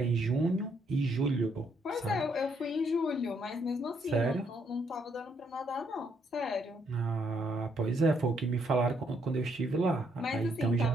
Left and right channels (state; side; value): normal; both; correlation 0.72